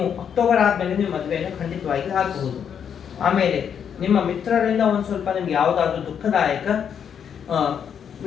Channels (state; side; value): quieter; right; 8.0 dB